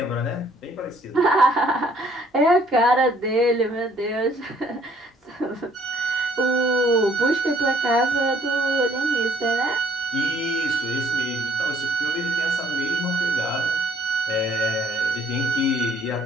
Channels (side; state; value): both; normal; correlation 0.60